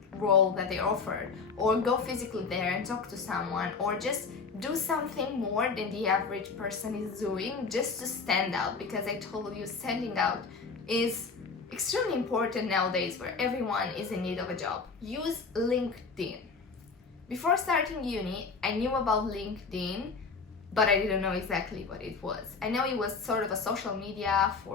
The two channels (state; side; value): quieter; right; 4.8 dB